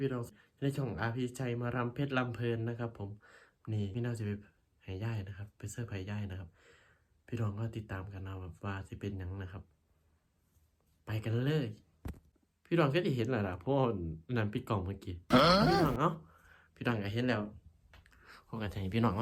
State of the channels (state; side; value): identical; both; correlation 1.00